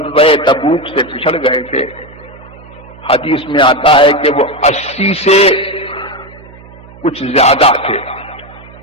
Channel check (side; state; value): right; noise; hum, 21 dB below the sound